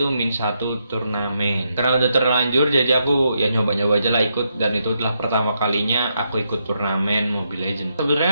min 1 turnamen. Karena udah terlanjur, jadi aku ya nyoba-nyoba aja lah ikut, dan itu adalah pertama kalinya aku ikut turnamen Mobile Legends.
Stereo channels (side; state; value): both; inverted; correlation -0.80